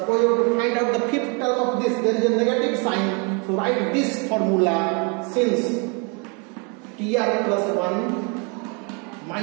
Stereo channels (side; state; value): left; quieter; 33.7 dB